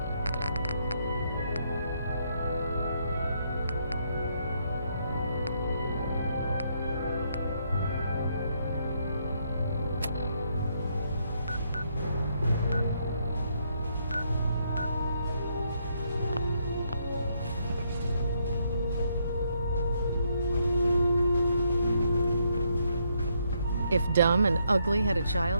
If Dumb and Ugly had a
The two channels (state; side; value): inverted; both; correlation -0.74